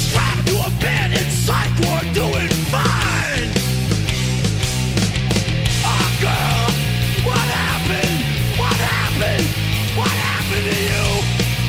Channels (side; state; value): both; identical; correlation 1.00